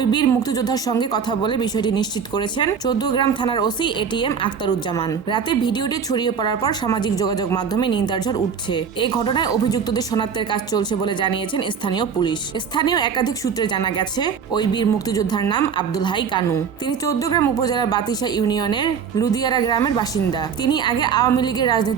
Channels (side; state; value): left; quieter; 6.7 dB